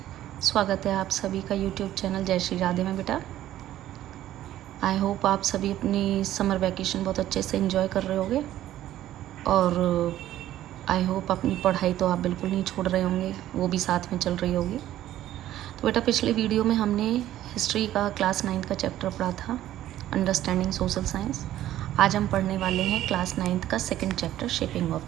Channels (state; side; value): quieter; left; 13.1 dB